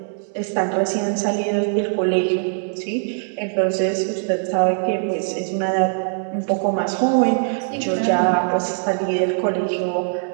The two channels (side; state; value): left; silent; digital silence